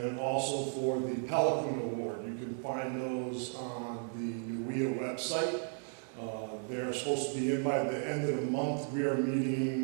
also for the Pelican Award. You can find those on the NUIA website. They're supposed to be in by the end of the month. We are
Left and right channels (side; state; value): left; silent; 55 dB below the other